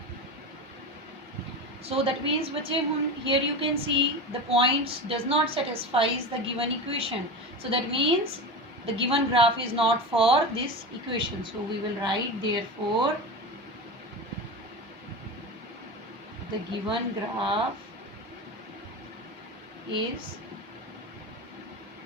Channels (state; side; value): normal; both; correlation 0.25